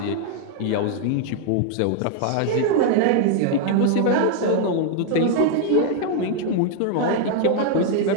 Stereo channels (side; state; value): both; different; correlation 0.00